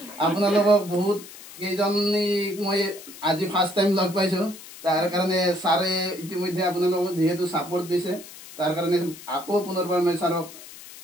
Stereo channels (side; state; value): left; noise; hiss, 16 dB below the sound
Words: আপোনালোকক বহুত কেইজনী মই আজি ফাৰ্ষ্ট টাইম লগ পাইছো। তাৰ কাৰণে ছাৰে ইতিমধ্যে আপোনালোকক যিহেতু ছাপোৰ্ট দিছে, তাৰ কাৰণে আকৌ পুনৰবাৰ মই ছাৰক